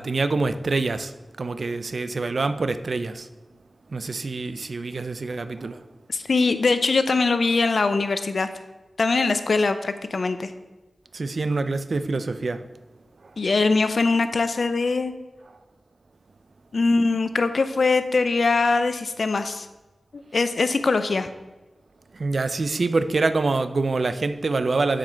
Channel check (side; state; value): both; normal; correlation 0.92